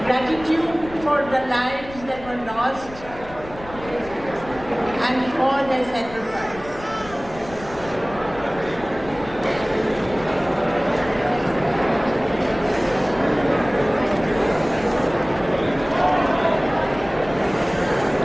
gratitude for the lives that were lost and for their sacrifice.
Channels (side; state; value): left; noise; rumble, 17 dB below the sound